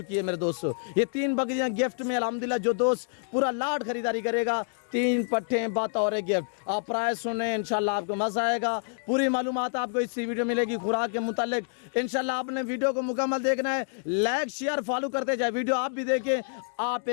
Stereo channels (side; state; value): right; silent; digital silence